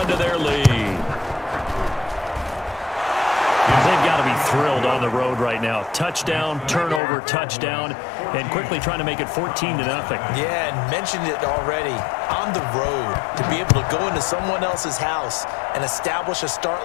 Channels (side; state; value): right; drops out; at 7.0 s